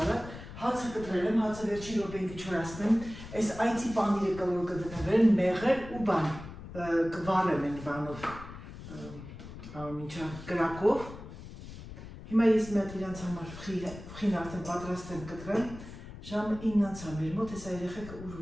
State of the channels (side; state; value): left; noise; rumble, 13 dB below the sound